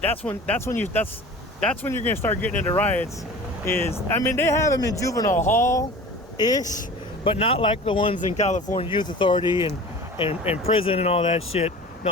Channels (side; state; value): both; normal; correlation 0.39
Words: that's when you're gonna start getting into riots. They have them in Juvenile Hall ish, but not like the ones in California Youth Authority and prison and all that shit.